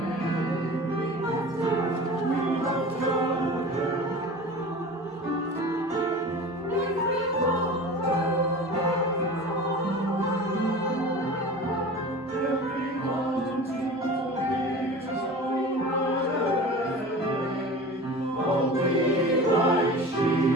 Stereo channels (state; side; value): normal; both; correlation 0.36